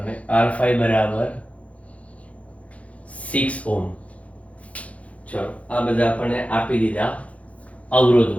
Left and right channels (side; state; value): right; late; 0.065 ms